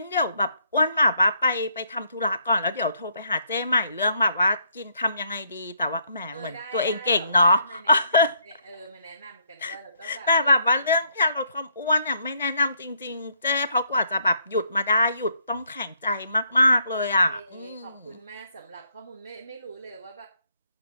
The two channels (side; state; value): both; inverted; correlation -0.71